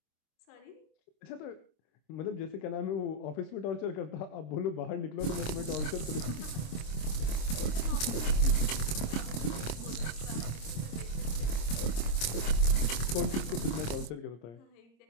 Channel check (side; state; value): right; late; 26 ms